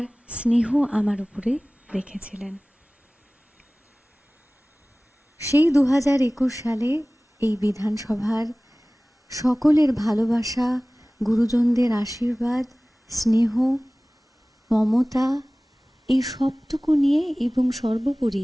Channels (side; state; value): both; normal; correlation 0.98